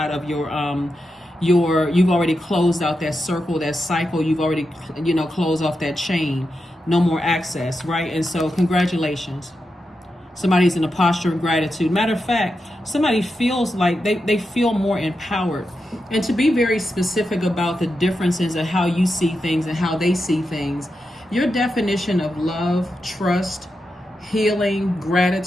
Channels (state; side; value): normal; both; correlation 0.88